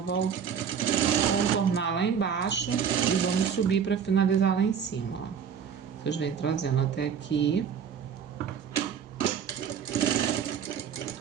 contornar lá embaixo e vamos subir para finalizar lá em cima, ó. Vocês vêm trazendo até aqui.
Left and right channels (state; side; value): quieter; left; 7.5 dB